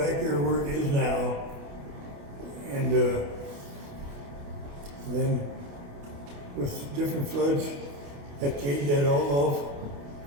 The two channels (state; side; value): late; left; 28 ms